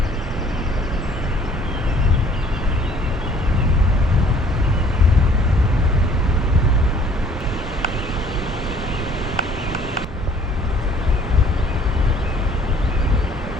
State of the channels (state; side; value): normal; both; correlation 0.56